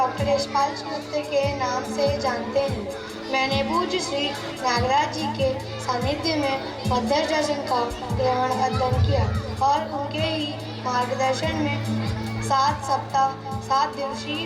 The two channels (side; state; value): both; identical; correlation 1.00